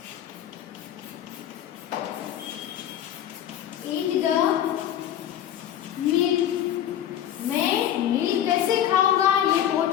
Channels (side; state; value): right; quieter; 10.9 dB